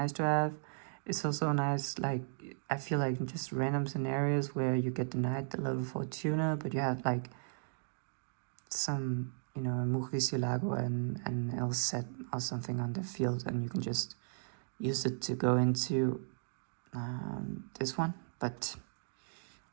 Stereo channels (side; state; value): left; silent; digital silence